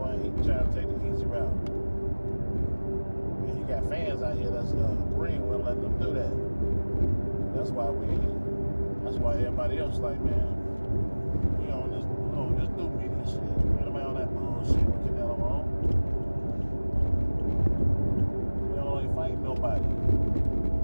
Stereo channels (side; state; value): both; inverted; correlation -1.00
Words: ain't trying to take the easy route. And he got fans out here that's agreeing with letting them do that. That's why everybody else like, man, we on this new media shit. Anybody on that bullshit with Canelo on? Canelo ain't fighting nobody.